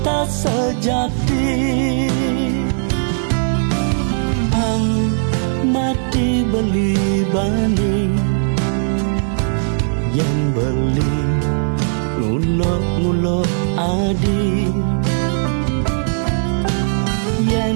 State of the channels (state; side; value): silent; left; digital silence